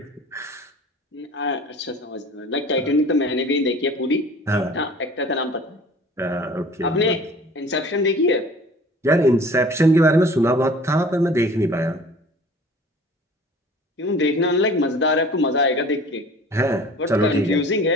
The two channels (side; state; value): both; normal; correlation 0.46